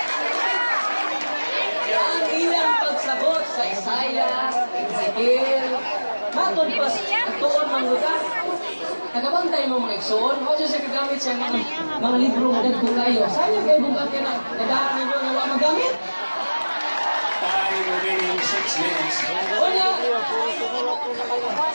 Ang ilang pagsagot sa Isaiah, Ezekiel, matod pa ang tuon ng lugar. Nagabantay mo mga iksoon, o siya kagamit siya mga libro na nagpo kayo. Sayang kayo bugat ka na, nadahan ninyo na wala magamit. Remaining 6 minutes. Una,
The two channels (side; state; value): both; inverted; correlation -1.00